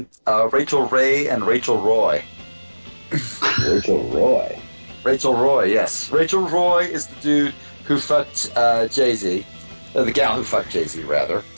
Rachel Ray and Rachel Roy. Rachel Roy. Rachel Roy, yes. Rachel Roy is the dude who fucked Jay-Z, the gal who fucked Jay-Z, rather.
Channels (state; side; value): inverted; both; correlation -1.00